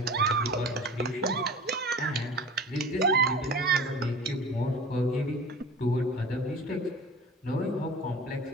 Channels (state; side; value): normal; both; correlation 0.39